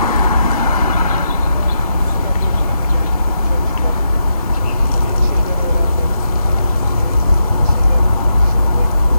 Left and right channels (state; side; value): inverted; both; correlation -0.84